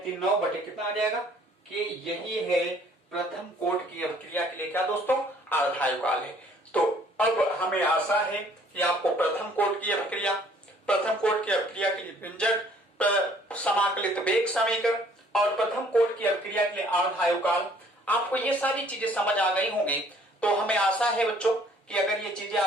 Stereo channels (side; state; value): both; normal; correlation 0.59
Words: बटे कितना आ जाएगा कि यही है प्रथम कोट की अवक्रिया के लिए क्या दोस्तों अर्धायुकाल है। तो अब हमें आशा है कि आपको प्रथम कोट की अवक्रिया, प्रथम कोट की अवक्रिया के लिए व्यंजक, समाकलित वेग समीकरण और प्रथम कोट की अवक्रिया के लिए अर्धायुकाल, आपको ये सारी चीजें समझ आ गई होंगी। तो हमें आशा है बच्चों कि अगर ये चीजें